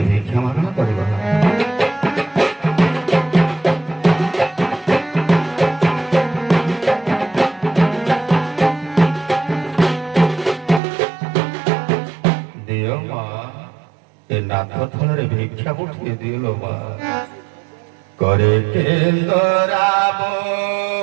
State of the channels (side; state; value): left; drops out; at 10.8 s